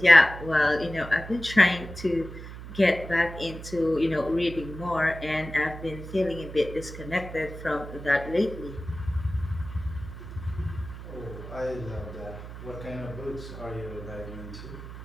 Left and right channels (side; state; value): right; noise; hum, 12 dB below the sound